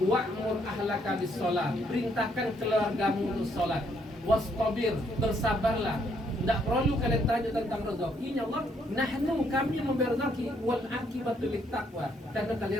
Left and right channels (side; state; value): both; normal; correlation 0.71